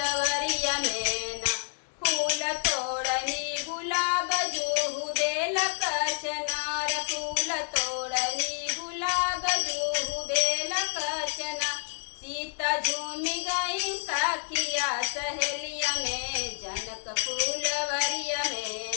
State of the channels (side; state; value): right; silent; digital silence